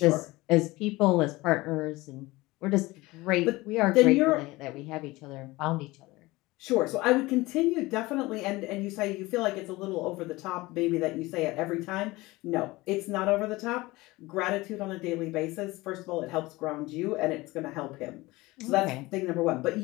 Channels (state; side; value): quieter; right; 20.8 dB